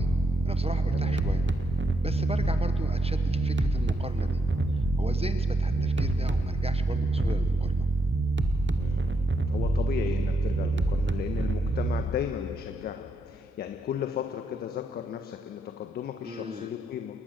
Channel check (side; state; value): both; normal; correlation 0.79